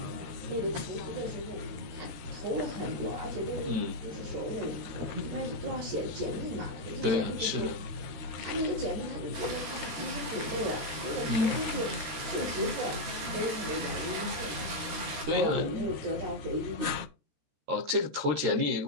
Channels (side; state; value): left; late; 13 ms